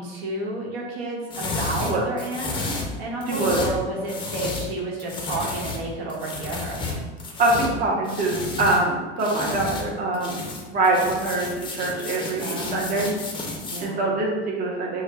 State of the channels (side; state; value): both; normal; correlation 0.15